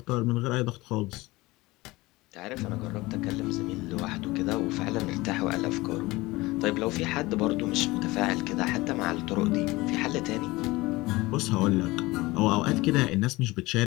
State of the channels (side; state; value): right; quieter; 20.8 dB